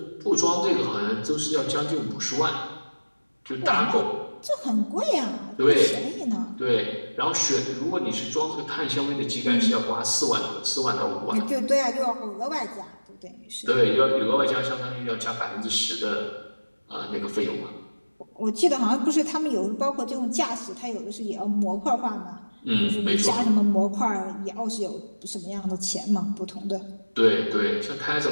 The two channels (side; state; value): both; inverted; correlation -1.00